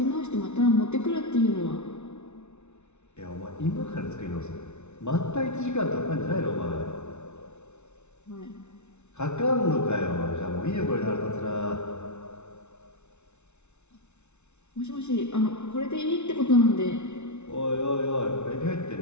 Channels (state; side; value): late; right; 0.82 ms